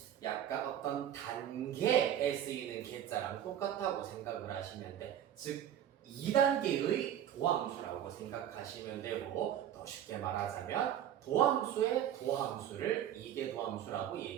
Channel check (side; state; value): left; quieter; 10.6 dB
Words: 약간 어떤 단계에 쓰이는 계자랑 똑같다고 생각을 하시면 돼. 즉 2단계의 도함수라고 생각하시면 되고 더 쉽게 말하자면 도함수의 도함수를 이계 도함수라고